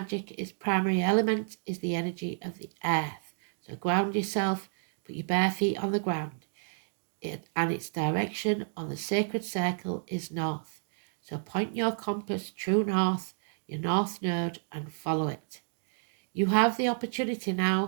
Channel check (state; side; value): silent; left; digital silence